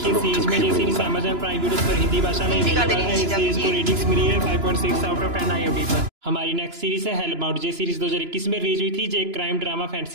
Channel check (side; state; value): left; late; 2.9 ms